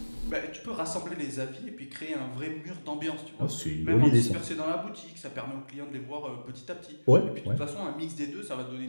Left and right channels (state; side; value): inverted; both; correlation -1.00